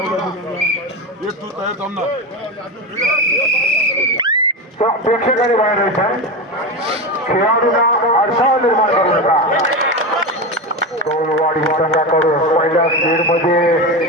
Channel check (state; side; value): normal; both; correlation 0.19